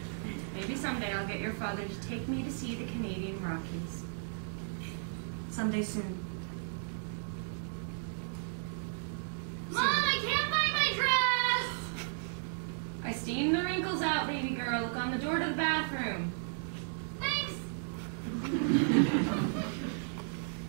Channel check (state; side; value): silent; left; digital silence